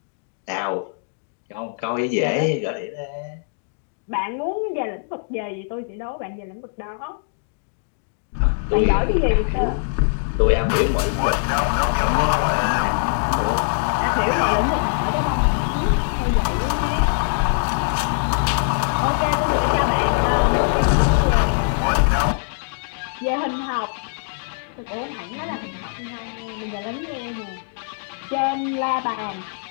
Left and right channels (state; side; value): silent; right; digital silence